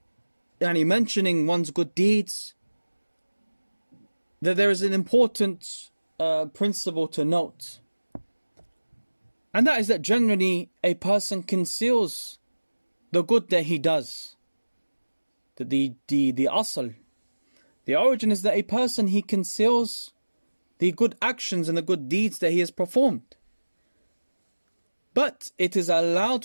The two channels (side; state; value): both; inverted; correlation -1.00